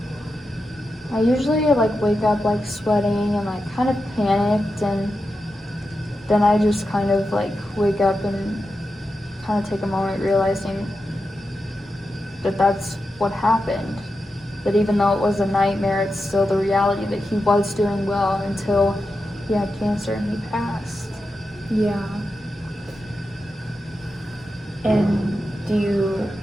I usually like wake up like sweating and like kind of panicked, and then I just kind of like wake up and kind of take a moment realizing that that's what happened. That even though it was a nightmare, it's still the reality that he was doing well until he had cancer and he passed. Yeah. And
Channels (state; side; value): normal; both; correlation 0.89